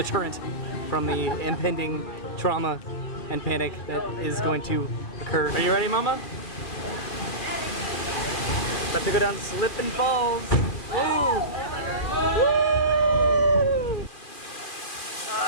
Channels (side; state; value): right; late; 2.4 ms